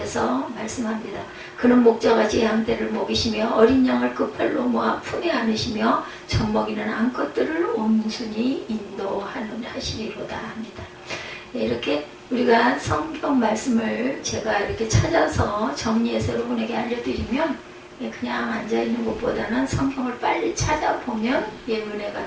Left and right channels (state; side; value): identical; both; correlation 1.00